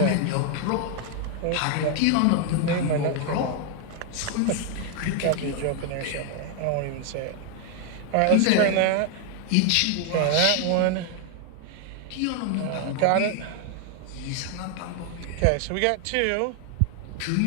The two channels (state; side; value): different; both; correlation 0.00